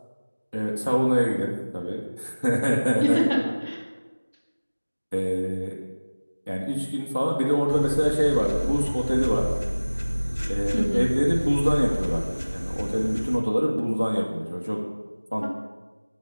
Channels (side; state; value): both; inverted; correlation -1.00